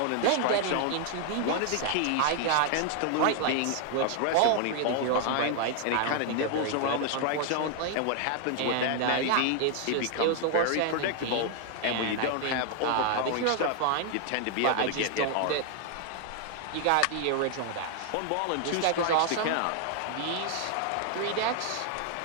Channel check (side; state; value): both; different; correlation 0.00